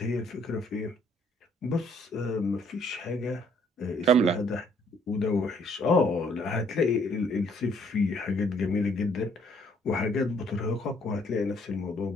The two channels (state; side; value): normal; both; correlation 0.65